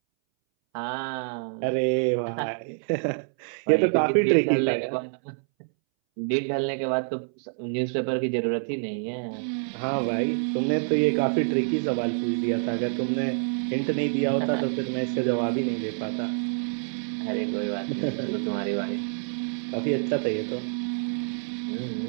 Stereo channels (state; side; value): silent; left; 60 dB below the other